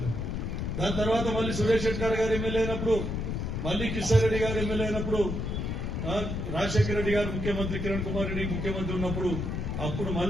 దాని తర్వాత మళ్ళీ సురేష్ షెట్కార్ గారు ఎమ్మెల్యే అయినప్పుడు, మళ్ళీ కిషోర్ గారు ఎమ్మెల్యే అయినప్పుడు, రాజశేఖర రెడ్డి గారు ముఖ్యమంత్రి, కిరణ్ కుమార్ రెడ్డి ముఖ్యమంత్రి ఉన్నప్పుడు అప్పుడు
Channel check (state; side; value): noise; left; rumble, 2 dB below the sound